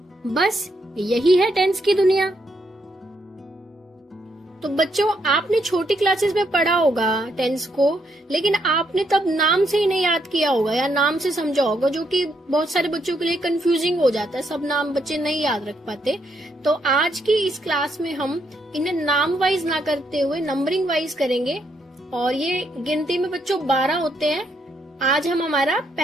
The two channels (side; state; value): both; normal; correlation 0.76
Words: बस यही है टेंस की दुनिया। तो बच्चों, आपने छोटी क्लासेस में पढ़ा होगा टेंस को, लेकिन आपने तब नाम से ही नहीं याद किया होगा या नाम से समझा होगा, जो कि बहुत सारे बच्चों के लिए कंफ्यूजिंग हो जाता है। सब नाम बच्चे नहीं याद रख पाते। तो आज की इस क्लास में हम इन्हें नाम वाइज ना करते हुए नंबरिंग वाइज करेंगे, और ये गिनती में बच्चों 12 होते हैं। आज हम हमारा